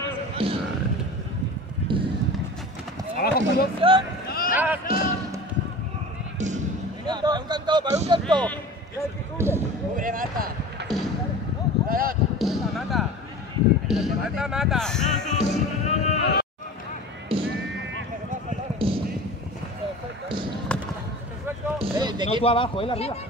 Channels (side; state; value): both; normal; correlation 0.37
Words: Abajo, producción. Para un canto, para un canto. Cubre, mata. Mata. Mata, mata. No tú abajo, él arriba.